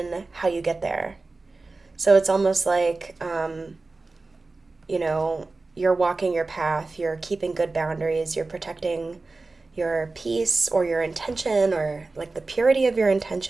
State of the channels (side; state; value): left; quieter; 3.5 dB